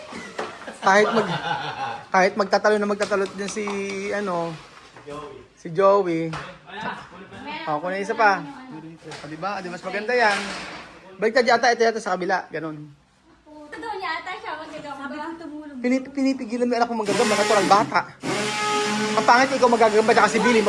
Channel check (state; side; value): identical; both; correlation 1.00